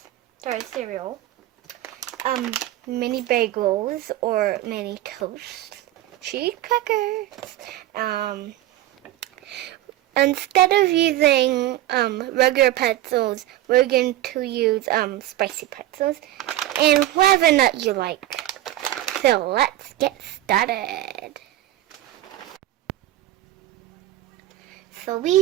sorry, cereal, mini bagels or mini toast, cheese crackers, instead of using regular pretzels, we're going to use spicy pretzels and whatever nut you like. So let's get started. So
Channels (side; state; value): left; quieter; 14.6 dB